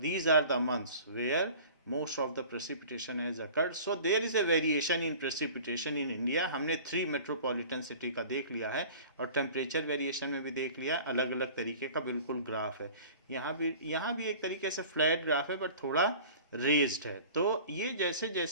are the months where most of the precipitation has occurred. So there is a variation in precipitation in India. हमने 3 metropolitan city का देख लिया है, और temperature variation में भी देख लिया. अलग अलग तरीके का बिल्कुल ग्राफ है. यहाँ भी एक तरीके से फ्लैट ग्राफ है, बट थोड़ा रेज्ड है. तो ये जैसे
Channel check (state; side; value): inverted; both; correlation -0.43